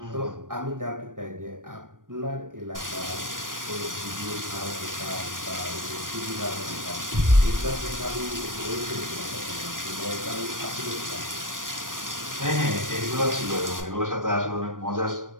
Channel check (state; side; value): late; left; 0.89 ms